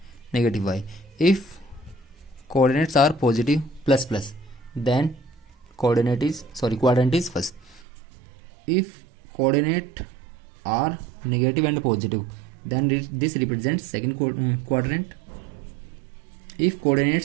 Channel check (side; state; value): left; drops out; at 7.8 s